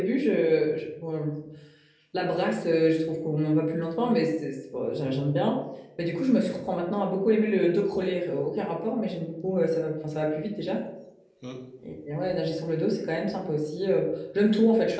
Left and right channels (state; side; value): identical; both; correlation 1.00